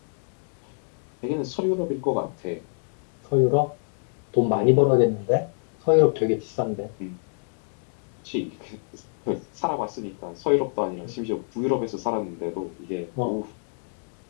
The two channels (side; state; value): right; silent; 61 dB below the other